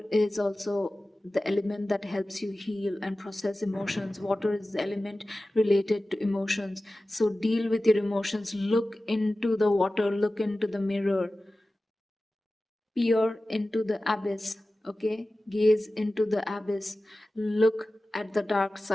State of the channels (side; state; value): both; normal; correlation 0.96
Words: is also the element that helps you heal and process emotions. Water is the element related to emotions. So deal with your emotions. Look into the water, look into the mirror, peer into the abyss. Okay, gaze into the abyss, look at the dark